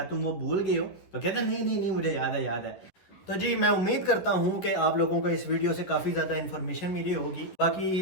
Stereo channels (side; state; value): right; late; 11 ms